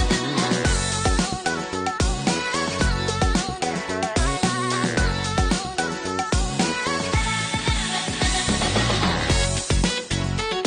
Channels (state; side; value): identical; both; correlation 1.00